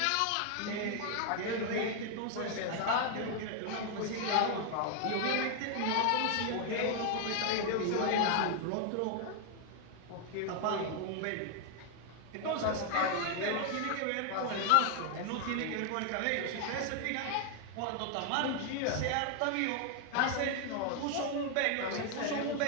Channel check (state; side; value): different; both; correlation 0.00